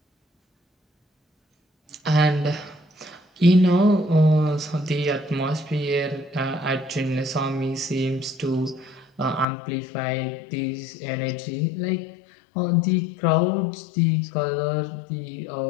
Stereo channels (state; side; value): drops out; right; at 9.5 s